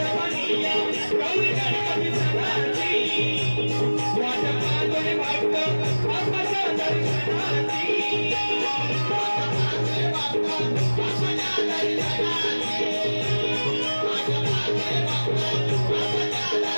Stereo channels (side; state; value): both; inverted; correlation -1.00